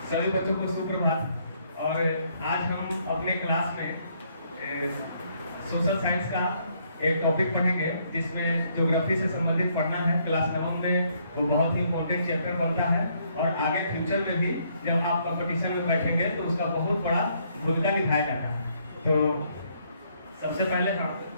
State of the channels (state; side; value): inverted; both; correlation -0.70